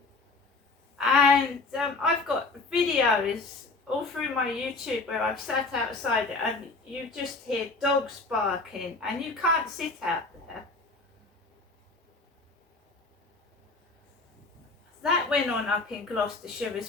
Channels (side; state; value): right; quieter; 3.7 dB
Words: And I've got videos all through my YouTube where I've sat outside and you just hear dogs barking and you can't sit out there. That went on up in Gloucestershire